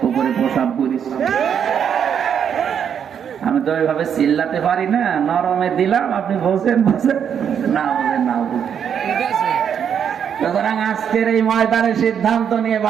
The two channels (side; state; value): left; quieter; 8.1 dB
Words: উপরে প্রসাব করিস। আমি তো ওইভাবে চিল্লাতে পারি না, নরমে দিলাম, আপনি বলছেন না বলেন না বলেন। সুতরাং আজকের এই ময়দানে সিদ্ধান্ত নিয়ে